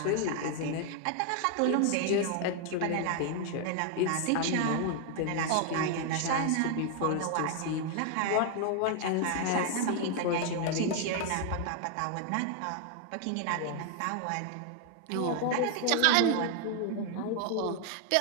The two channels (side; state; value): both; different; correlation 0.00